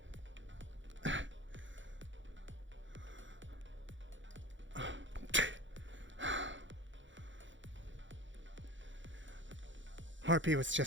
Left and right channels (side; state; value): left; late; 0.55 ms